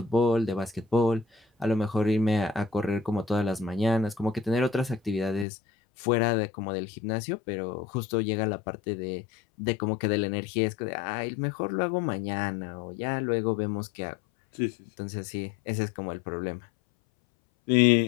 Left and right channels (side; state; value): right; drops out; at 5.5 s